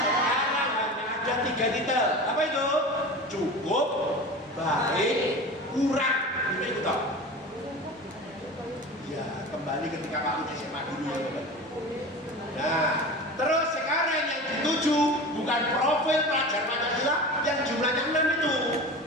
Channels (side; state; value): both; normal; correlation 0.32